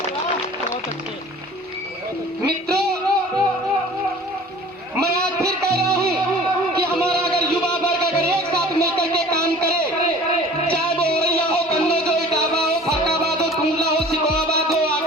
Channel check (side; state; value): both; normal; correlation 0.45